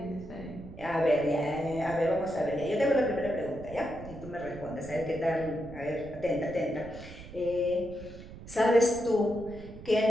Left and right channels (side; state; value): right; noise; rumble, 15 dB below the sound